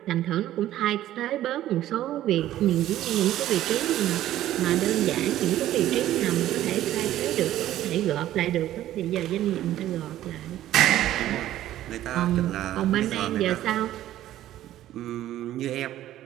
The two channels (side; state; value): left; quieter; 13.3 dB